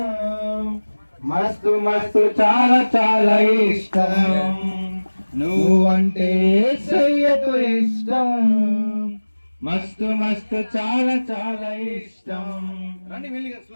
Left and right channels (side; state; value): both; inverted; correlation -1.00